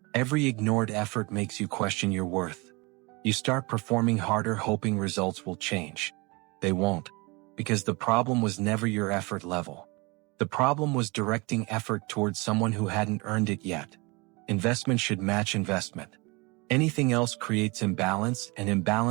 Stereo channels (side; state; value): left; quieter; 26.7 dB